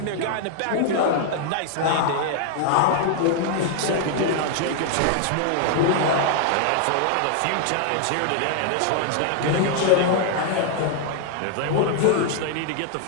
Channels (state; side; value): different; both; correlation 0.00